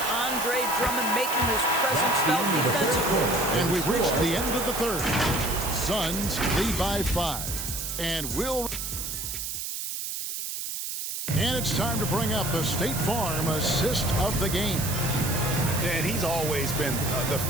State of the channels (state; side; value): noise; right; hiss, 5 dB below the sound